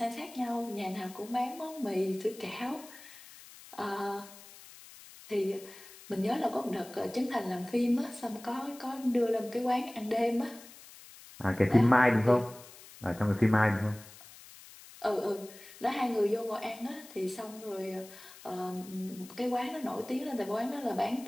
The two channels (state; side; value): noise; left; hiss, 19 dB below the sound